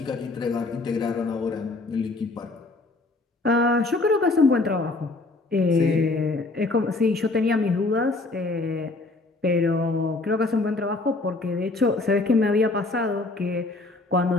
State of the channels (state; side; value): quieter; right; 3.3 dB